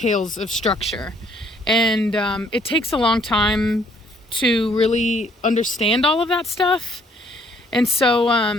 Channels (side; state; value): both; normal; correlation 0.64